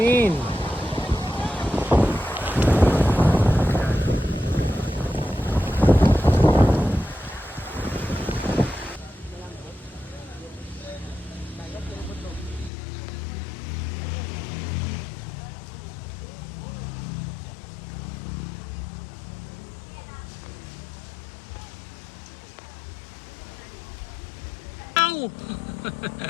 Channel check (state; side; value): drops out; right; at 12.7 s